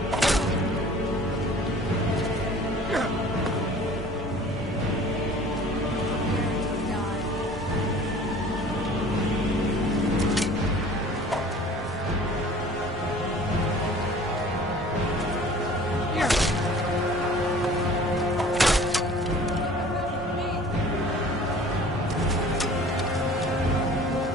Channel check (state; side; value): normal; both; correlation 0.47